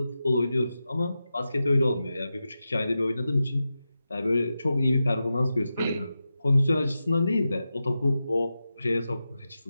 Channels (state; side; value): inverted; both; correlation -0.91